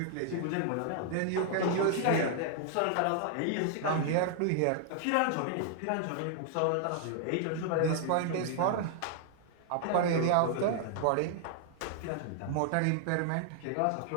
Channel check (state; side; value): different; both; correlation 0.00